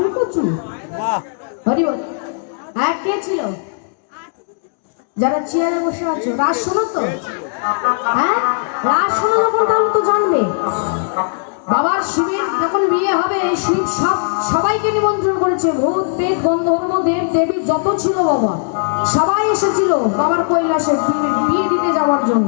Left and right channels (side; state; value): right; silent; 68 dB below the other